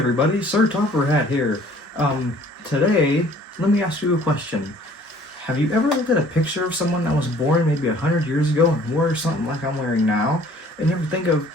Sir Topper Hat here. Today, let me ask you a question. Have you ever looked at a picture of someone that was born maybe 100 years ago and wore something like I'm wearing now, and you ever think of,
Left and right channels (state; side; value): normal; both; correlation 0.54